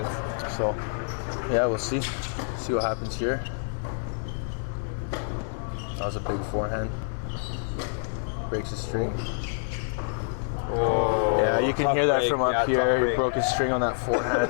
So, yeah, we'll see what happens here. That was a big forehand. Breaks his string. Oh, Yeah, you can hear that break. from up Yeah, here. tough He break. broke his string on that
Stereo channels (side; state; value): right; silent; digital silence